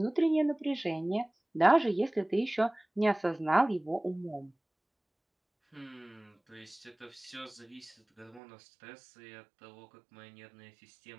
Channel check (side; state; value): left; drops out; at 8.4 s